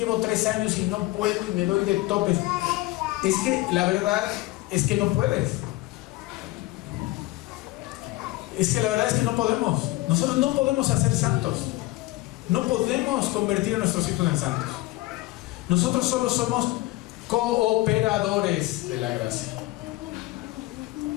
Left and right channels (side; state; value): right; quieter; 19.0 dB